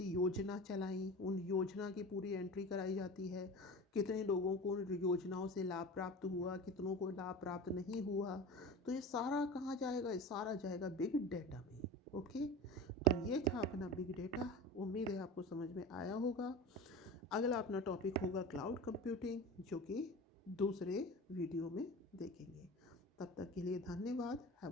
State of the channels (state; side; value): normal; both; correlation 0.33